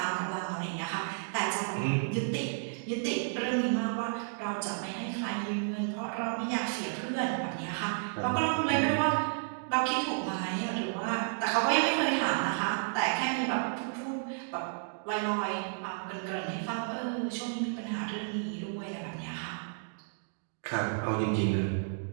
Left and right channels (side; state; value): left; silent; digital silence